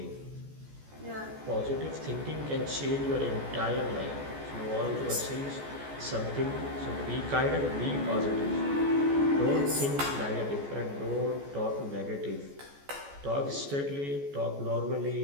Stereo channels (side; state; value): left; late; 14 ms